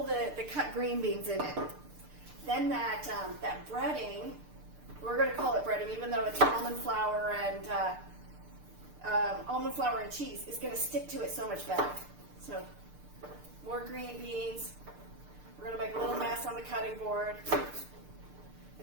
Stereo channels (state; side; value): late; left; 6.7 ms